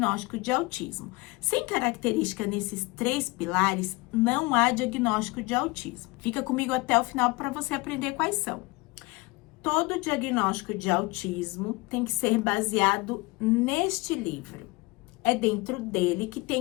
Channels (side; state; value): right; quieter; 24.1 dB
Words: de autismo. Sem característica nesses 3 pilares, não há diagnóstico de autismo. Fica comigo até o final para você aprender quais são. Todo diagnóstico de autismo tem que ser baseado neste livro. É dentro dele que